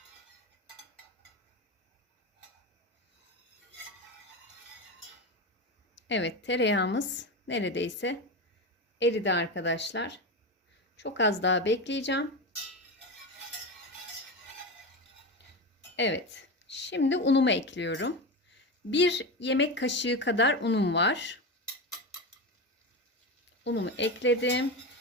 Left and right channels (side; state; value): both; normal; correlation 0.20